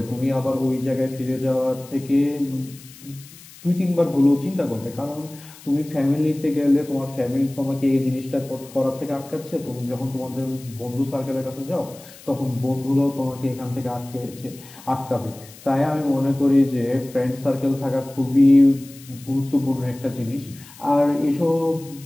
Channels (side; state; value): left; noise; hiss, 20 dB below the sound